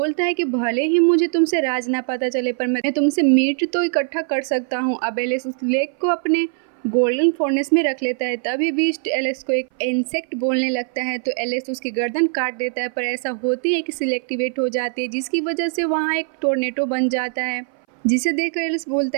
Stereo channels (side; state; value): left; silent; 60 dB below the other